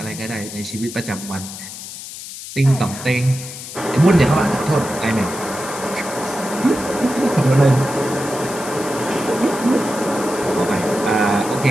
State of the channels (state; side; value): noise; left; hiss, 11 dB below the sound